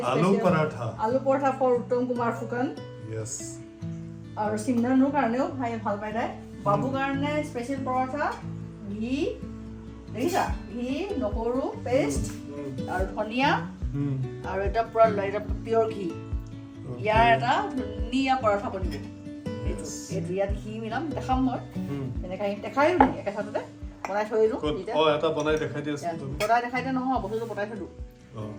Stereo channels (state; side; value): identical; both; correlation 1.00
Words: Aloo special. paratha. Aloo paratha for Uttam Kumar Fukan. Yes আৰু সিমৰানৰ কাৰণেও খাই ভাল পাই তাই বাবু কাৰণে স্পেচিয়েল পৰঠা ঘি দেখিছা ঘি নহৰু পেষ্ট আৰু ধনিয়া আৰু এটা পুৰা এটা পিয়ৰ ঘি ইয়াৰ এটা ধুনীয়া পৰঠা বনিব এইটো ইয়াত ঘি মিলাম দেখাম মই এনেকৈ দেখায়ো নি একেচাতে বনাই থৈ দিলোঁ অ এটা বনাই দেখাই দি আছো তুমি বনাই দেখাইতে নহয় বস্তুটো বনাই থলোঁ